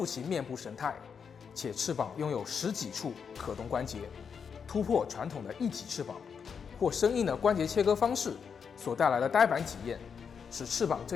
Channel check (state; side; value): quieter; right; 6.5 dB